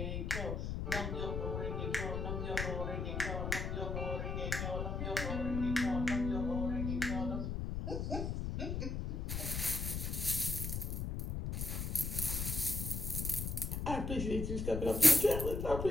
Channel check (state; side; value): noise; left; rumble, 2 dB below the sound